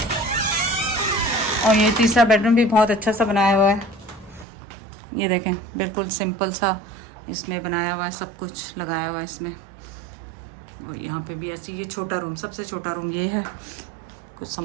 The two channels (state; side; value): drops out; left; at 4.5 s